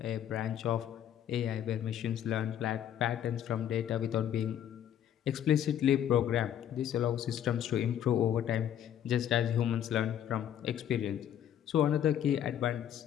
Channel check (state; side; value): quieter; right; 10.2 dB